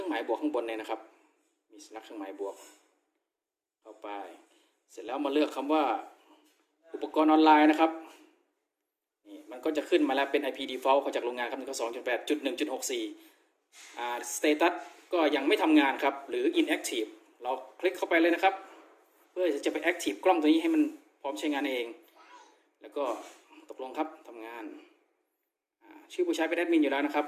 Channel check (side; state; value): both; identical; correlation 1.00